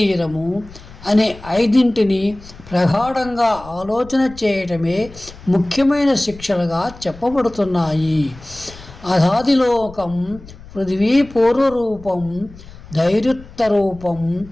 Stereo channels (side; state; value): left; noise; rumble, 19 dB below the sound